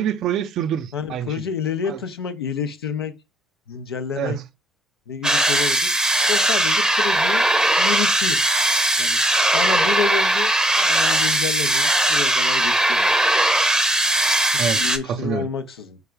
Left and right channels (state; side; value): normal; both; correlation 0.66